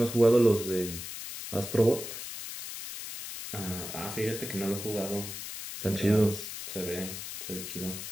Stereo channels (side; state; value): left; noise; hiss, 8 dB below the sound